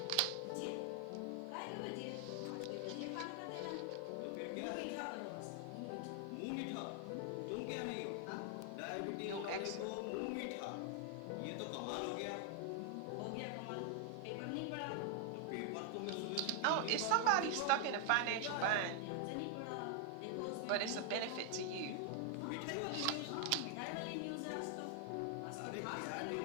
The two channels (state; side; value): different; both; correlation 0.00